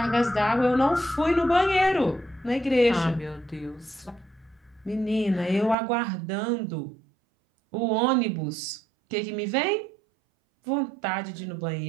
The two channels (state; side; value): drops out; left; at 5.8 s